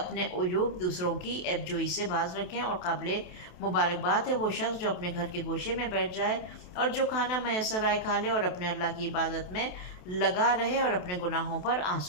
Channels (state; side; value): late; right; 28 ms